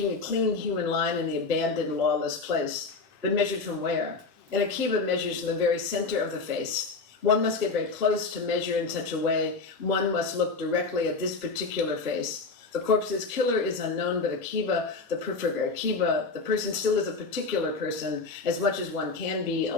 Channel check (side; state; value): right; quieter; 4.1 dB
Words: a clean human line in the abandoned lawless place. But measured from where? And Akiva measures from the very center of the face. One must get very close to measure in such a way. One must look directly at this particular face. The corpse's killer is unknown, but Akiva, the person still is a particular person, as much as one can be,